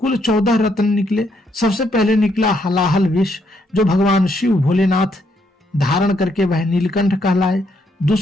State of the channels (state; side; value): normal; both; correlation 0.74